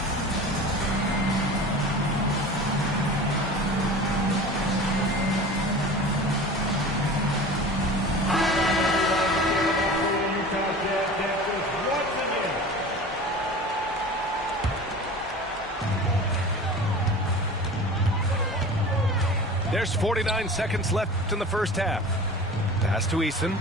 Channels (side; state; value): both; normal; correlation 0.37